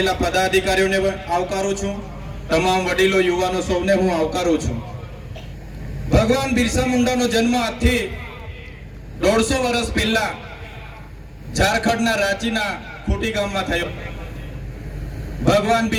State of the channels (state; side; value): identical; both; correlation 1.00